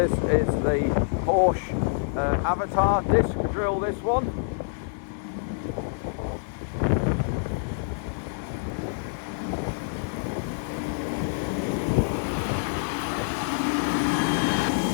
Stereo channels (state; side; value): silent; right; digital silence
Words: is the Horsch Avatar disc drill, this one.